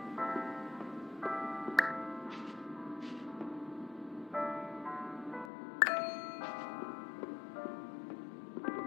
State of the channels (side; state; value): right; drops out; at 5.5 s